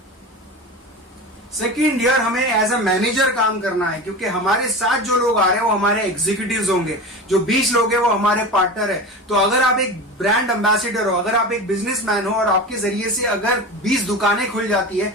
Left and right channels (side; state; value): both; normal; correlation 0.29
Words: सेकेंड ईयर हमें एज अ मैनेजर काम करना है, क्योंकि हमारे साथ जो लोग आ रहे हैं वो हमारे एग्जीक्यूटिव्स होंगे। जो 20 लोग हैं वो हमारे पार्टनर है। तो अगर आप एक ब्रांड एम्बेसडर हो, अगर आप एक बिजनेसमैन हो, और आपके जरिए से अगर 20 दुकानें खुल जाती है,